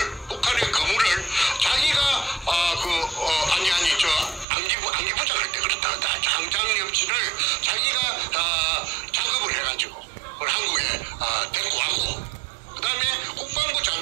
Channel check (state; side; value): drops out; left; at 4.5 s